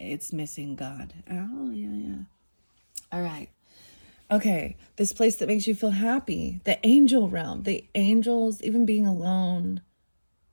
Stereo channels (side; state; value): both; inverted; correlation -1.00